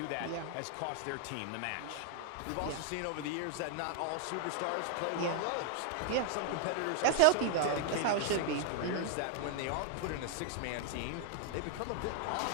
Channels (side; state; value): both; different; correlation 0.00